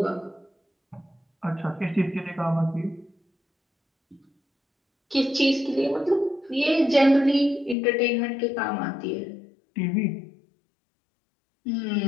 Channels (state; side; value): drops out; right; at 7.8 s